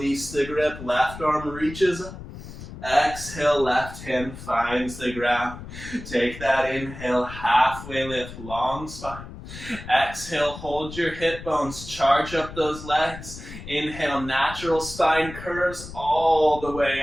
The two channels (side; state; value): left; noise; rumble, 13 dB below the sound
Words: the grip. Left arm reaches up. Exhale, left hand finds the ground. Take that inhale, halfway lift, long spine. Exhale, hold your hip bones, charge up those legs. Inhale, natural spine curves all the way